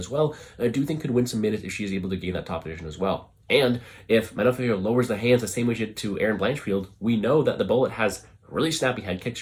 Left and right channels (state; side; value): identical; both; correlation 1.00